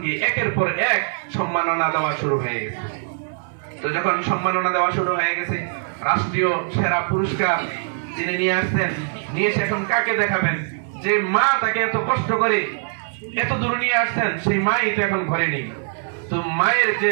একের পর এক সম্মাননা দেওয়া শুরু হয়ে গেছে। তো যখন সম্মাননা দেওয়া শুরু হয়ে গেছে, রাষ্ট্রীয় সেরা পুরস্কার তিনি নিয়ে আসছেন, নিয়ে এসে এখন কাকে দেখাবেন? যে মা তাকে এত কষ্ট করে এত দূর নিয়ে আসছেন, সেই মাই তো এখন ঘরে নেই। তো মায়ের যে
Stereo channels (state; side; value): silent; left; digital silence